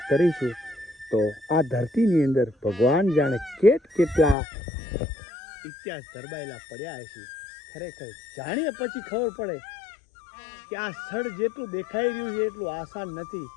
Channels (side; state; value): right; drops out; at 4.4 s